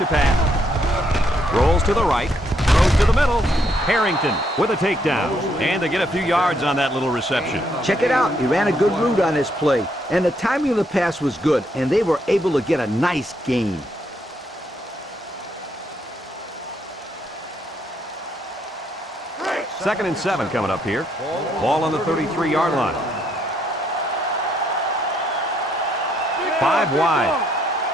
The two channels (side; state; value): both; normal; correlation 0.73